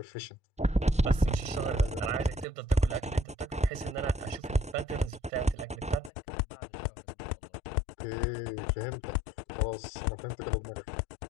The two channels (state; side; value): drops out; right; at 6.1 s